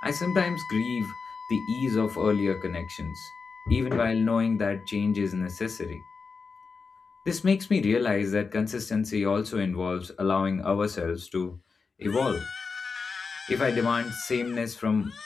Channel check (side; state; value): right; quieter; 4.9 dB